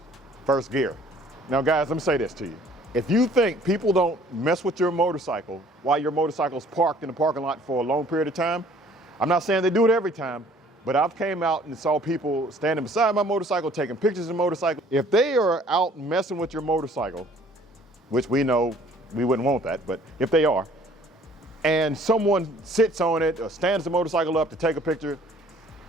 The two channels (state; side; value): normal; both; correlation 0.55